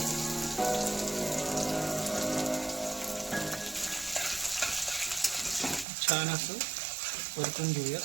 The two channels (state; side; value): drops out; left; at 5.9 s